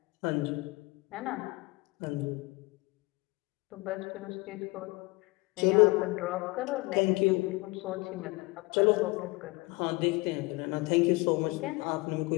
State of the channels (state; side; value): quieter; right; 24.2 dB